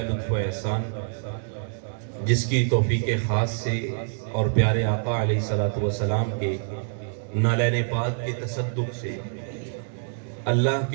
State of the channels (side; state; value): left; silent; digital silence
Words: لطف و احسان، جس کی توفیق خاص سے اور پیارے آقا علیہ الصلوۃ والسلام کے نالین پاک کے تصدق سے اللہ